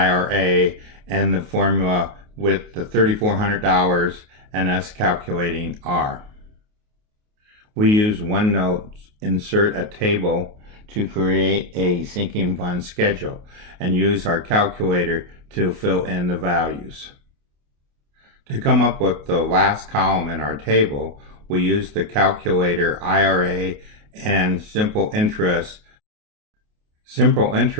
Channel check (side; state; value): left; late; 28 ms